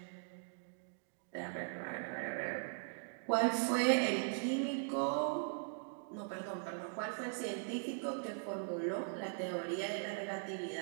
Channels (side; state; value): left; silent; digital silence